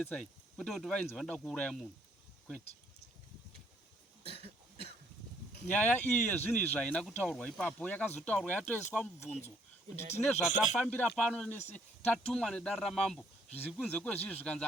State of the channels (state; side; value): normal; both; correlation 0.65